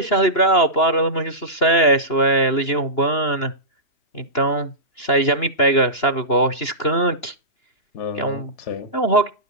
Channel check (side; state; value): right; late; 2.9 ms